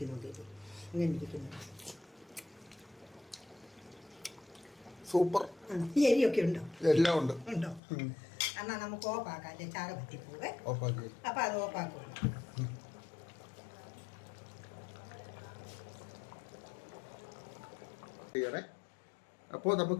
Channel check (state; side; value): drops out; right; at 7.8 s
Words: നോക്കിയിട്ട് ഇങ്ങനെ ഇരിക്കുന്നു. സൂപ്പർ. എരിയൊക്കെ ഉണ്ടോ? എല്ലാം ഉണ്ട്. ഉണ്ടോ? എന്നാൽ നമുക്ക് ഓഫാക്കാം, അല്ലേ ചാറ് പറ്റിപ്പോവേ. ഓഫാക്കി. അപ്പം അത് ഓഫാക്കും. അപ്പോൾ